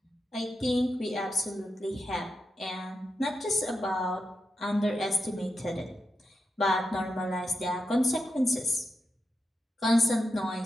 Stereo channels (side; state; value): both; normal; correlation 0.88